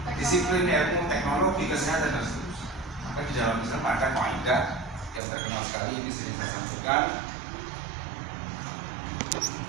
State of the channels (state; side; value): drops out; left; at 5.2 s